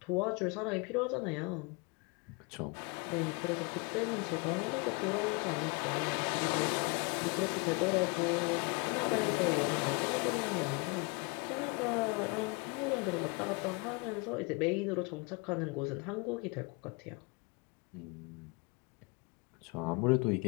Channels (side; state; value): right; quieter; 29.6 dB